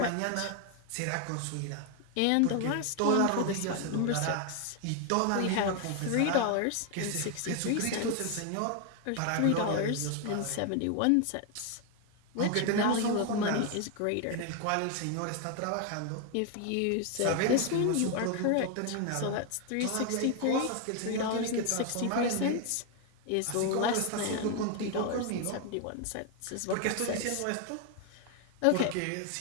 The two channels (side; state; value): both; different; correlation 0.01